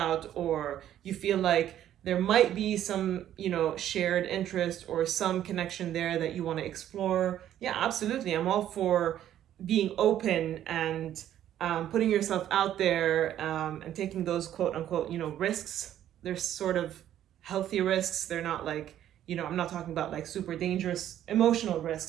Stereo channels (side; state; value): left; quieter; 11.4 dB